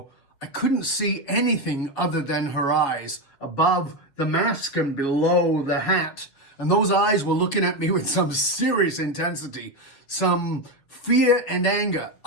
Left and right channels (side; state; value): right; late; 7.3 ms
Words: I couldn't see anything other than her eyes above the mask and below the hat. And those eyes were looking at me with some serious intensity, some fear and anger.